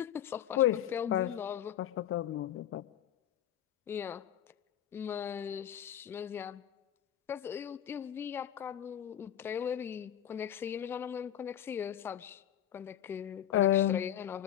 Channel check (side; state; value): right; quieter; 10.7 dB